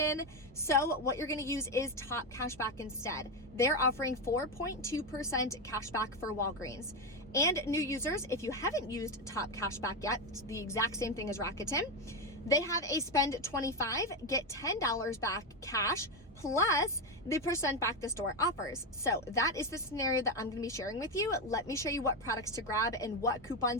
so what you're gonna use is Top Cashback instead. They're offering 4.2% cashback for Walgreens. And new users, if you haven't used Top Cashback yet, it's the exact same thing as Rakuten. They have a spend 25, get $10 back cash, plus the percent back the store offers. So that is the scenario that I'm gonna be sharing with you. Let me show you what products to grab and what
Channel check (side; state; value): both; normal; correlation 0.10